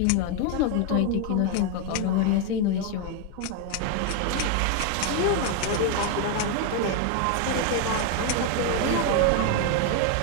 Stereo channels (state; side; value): different; both; correlation 0.01